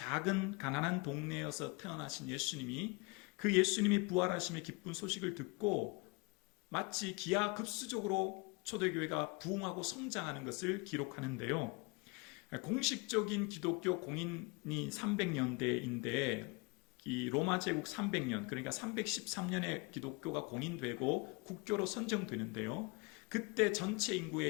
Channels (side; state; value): right; quieter; 28.1 dB